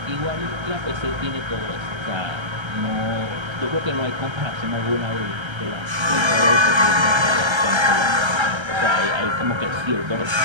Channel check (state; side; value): late; left; 1.3 ms